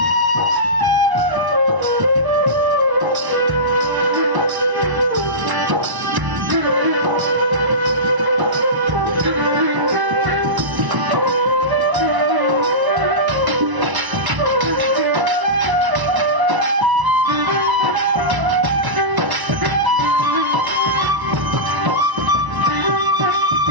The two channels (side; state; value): left; late; 1.0 ms